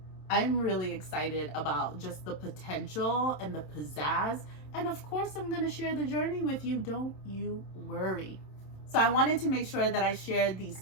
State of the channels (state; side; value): late; right; 27 ms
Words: I'm really excited about just the potential and the pizzazz. And of course, I'm going to share the journey with you. Don't you worry. So I wanted to make sure that I shared